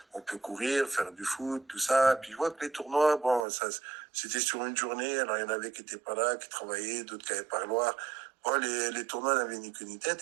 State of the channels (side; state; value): left; drops out; at 3.5 s